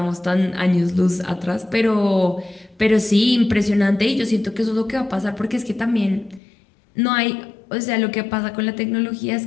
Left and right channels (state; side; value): drops out; right; at 6.4 s